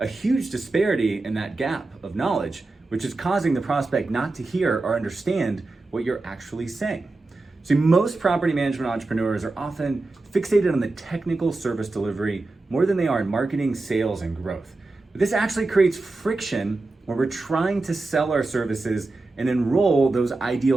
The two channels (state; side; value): quieter; left; 3.3 dB